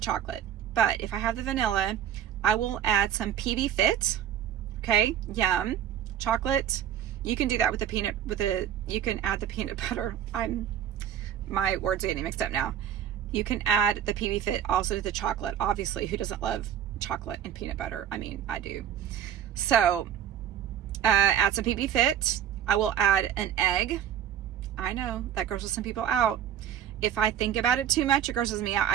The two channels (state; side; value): quieter; left; 9.9 dB